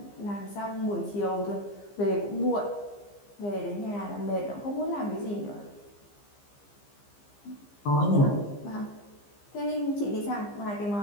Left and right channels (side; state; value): right; late; 15 ms